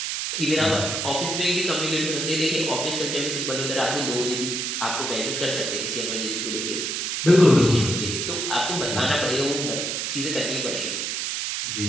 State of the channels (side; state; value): right; noise; hiss, 2 dB below the sound